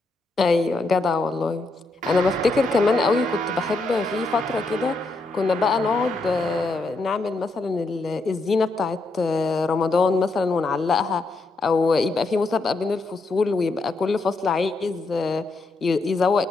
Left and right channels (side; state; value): right; quieter; 3.2 dB